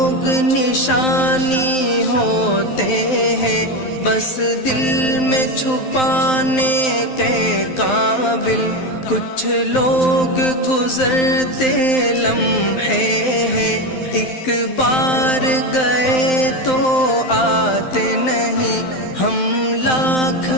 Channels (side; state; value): right; late; 12 ms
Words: نشانی ہوتے ہیں بس دل میں چھپانے کے قابل، کچھ لوگ گزرتے لمحے ہیں ایک بار گئے تو آتے نہیں، ہم لاکھ